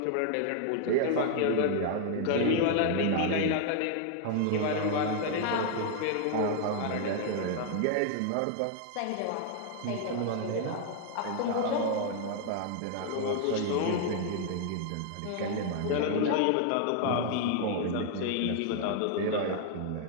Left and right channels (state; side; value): different; both; correlation 0.00